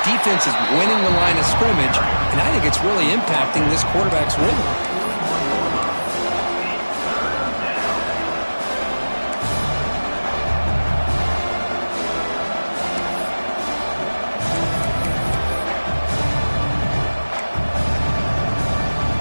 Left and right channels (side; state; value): both; inverted; correlation -1.00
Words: defense is winning the line of scrimmage, and I think it's really impacting this quarterback's rhythm.